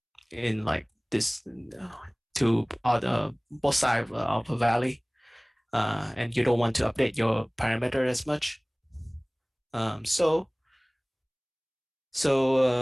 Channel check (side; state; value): both; identical; correlation 1.00